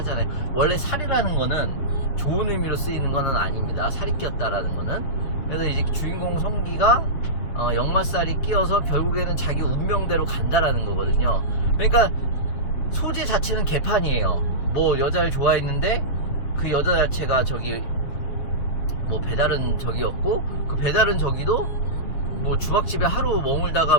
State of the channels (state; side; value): late; right; 6.9 ms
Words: 원래 살이라는 거는 좋은 의미로 쓰이는 거는 아닙니다. 살이 끼었다라는 거는. 그래서 이제 주인공 성기가 역마살이 끼어서 결국에는 자기 운명대로 간다라는 거거든요. 그러니까 소재 자체는 개판이에요. 뭐 여자를 좋아했는데 그 여자 자체가 저기 뭐 배다른 적이었고, 그 배다른 적이도 뭐 주막집에 하루 머물다가